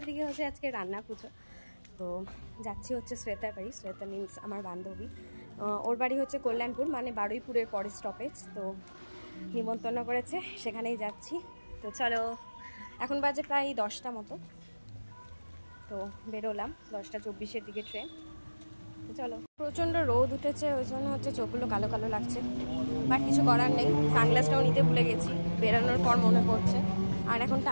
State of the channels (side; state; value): both; inverted; correlation -1.00